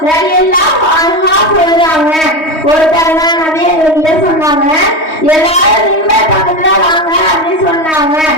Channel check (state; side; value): late; right; 3.2 ms